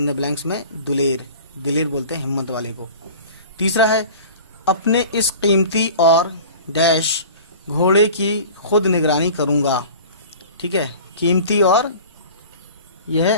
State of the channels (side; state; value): both; inverted; correlation -0.40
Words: دا بلینکس میں دلیر. دلیر بولتے ہیں ہمت والے کو. تیسرا ہے اپنے اس قیمتی اور ڈیش گھوڑے کی خود نگرانی کروں گا. ٹھیک ہے, قیمتی اور یہ